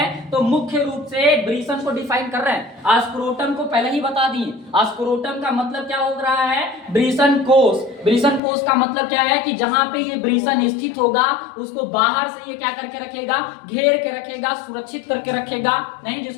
तो मुख्य रूप से ब्रीसन को डिफाइन कर रहे हैं। आस्क्रोटम को पहले ही बता दिए, आस्क्रोटम का मतलब क्या हो रहा है, ब्रीसन कोष। ब्रीसन कोष का मतलब क्या है कि जहां पे ये ब्रीसन स्थित होगा उसको बाहर से ये क्या करके रखेगा, घेर के रखेगा, सुरक्षित करके रखेगा, नहीं,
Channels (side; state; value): right; drops out; at 8.4 s